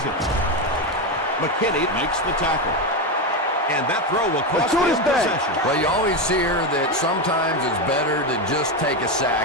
it. McKinney makes the tackle. And that throw will cost him possession. Well, you always hear that sometimes it's better to just take a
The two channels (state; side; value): normal; both; correlation 0.12